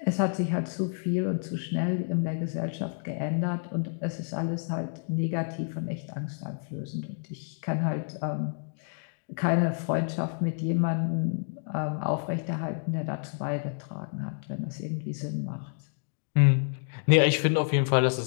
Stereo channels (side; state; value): right; silent; digital silence